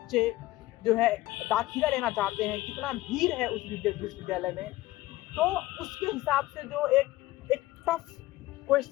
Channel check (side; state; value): right; quieter; 17.7 dB